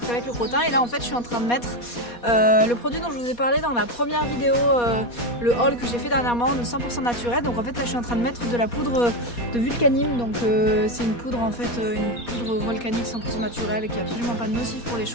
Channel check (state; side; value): late; right; 4.2 ms